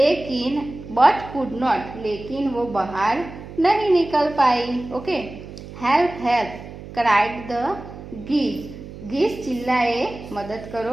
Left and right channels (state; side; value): noise; right; hum, 14 dB below the sound